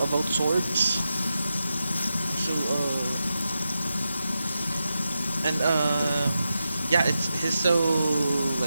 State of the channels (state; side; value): inverted; both; correlation -0.89